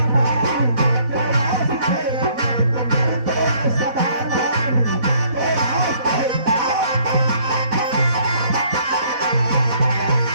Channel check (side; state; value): left; late; 4.1 ms